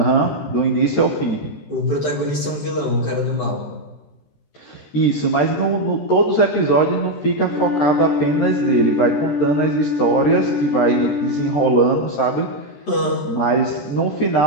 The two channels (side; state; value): right; late; 13 ms